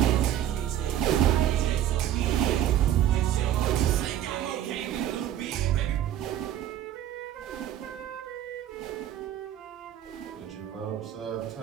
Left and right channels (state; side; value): quieter; left; 11.5 dB